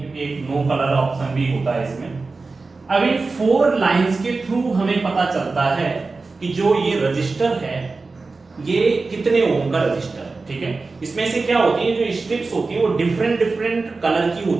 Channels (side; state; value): left; quieter; 3.9 dB